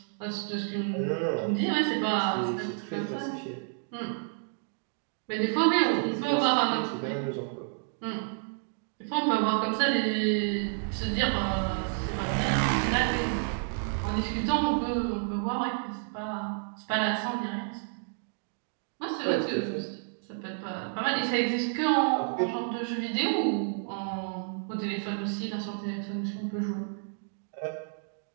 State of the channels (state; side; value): silent; left; digital silence